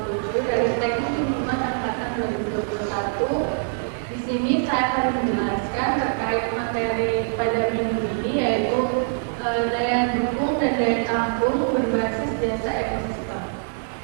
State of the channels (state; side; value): silent; left; digital silence